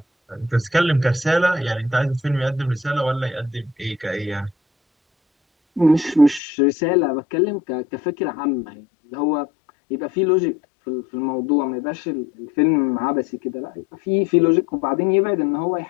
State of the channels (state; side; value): drops out; right; at 6.4 s